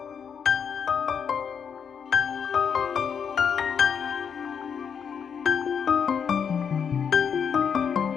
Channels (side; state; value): right; quieter; 7.1 dB